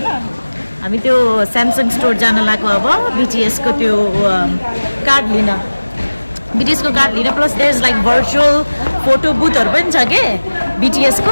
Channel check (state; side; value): inverted; both; correlation -1.00